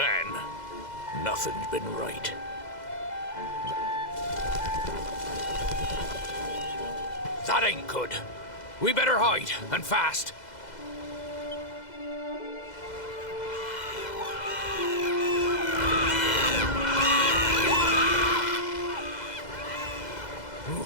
nothing's been right. That ain't good. We better hide, and fast.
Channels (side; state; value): right; late; 2.0 ms